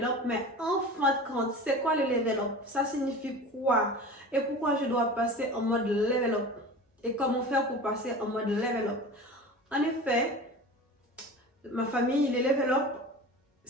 up, mais en fin de compte, c'est quoi le level up? Ça signifie quoi? Et pourquoi je dois passer en mode level up? Et comment faire pour passer en mode level up? En effet, ma famille, les level up,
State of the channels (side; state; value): both; normal; correlation 0.35